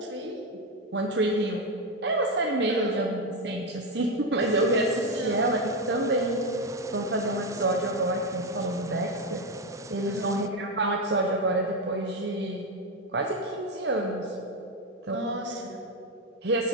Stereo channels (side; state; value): both; normal; correlation 0.09